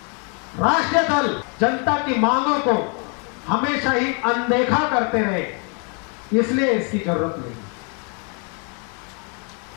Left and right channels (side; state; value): right; quieter; 37.1 dB